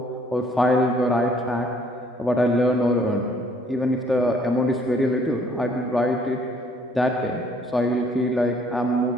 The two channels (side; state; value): both; normal; correlation 0.61